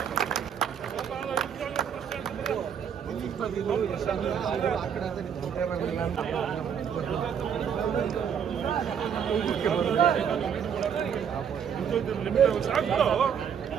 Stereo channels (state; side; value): quieter; left; 7.8 dB